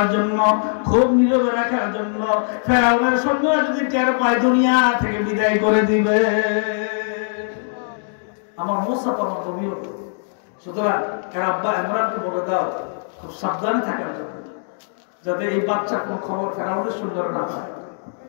জন্য, খুব নীরবে রাখার জন্য। ফেরাউনের সৈন্যরা যদি টের পায় দুনিয়া থেকে বিদায় করে দিবে। আমার মুসা তো আমার নবী, সুতরাং এর আব্বা ইমরানকে বলে দাও খুব সাবধানে থাকার জন্য, যাতে এই বাচ্চার কোন খবর ফেরাউনের সৈন্যরা না পায়।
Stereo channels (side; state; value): right; silent; digital silence